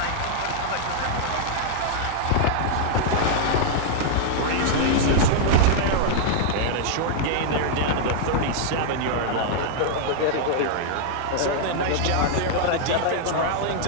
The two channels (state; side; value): different; both; correlation -0.01